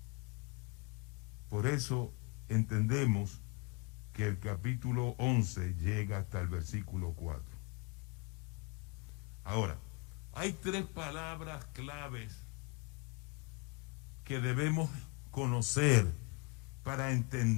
Por eso entendemos que el capítulo 11 llega hasta el versículo 4. Ahora, hay tres palabras claves que debemos conocer para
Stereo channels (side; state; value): right; quieter; 30.1 dB